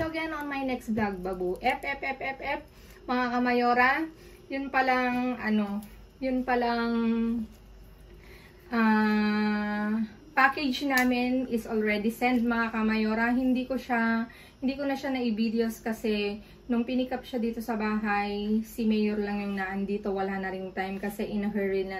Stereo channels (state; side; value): identical; both; correlation 1.00